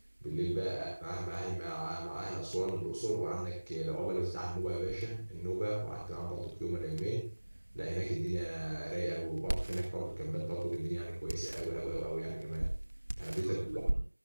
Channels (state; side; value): inverted; both; correlation -1.00